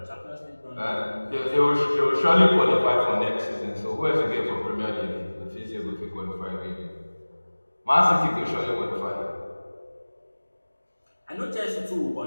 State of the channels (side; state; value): both; inverted; correlation -1.00